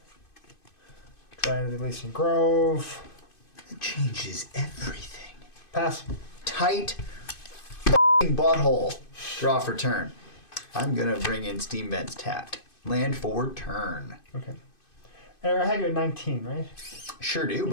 Dryad of the Ilysian Grove. It changes everything. Pass. Tight f***ing butthole. Draw for turn. I'm gonna bring in Steam Vents tapped. Land for turn. Okay. Eric, I had you at 19, right? Sure do,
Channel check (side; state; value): right; late; 2.5 ms